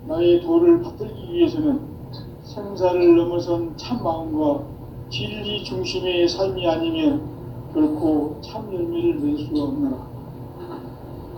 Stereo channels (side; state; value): both; identical; correlation 1.00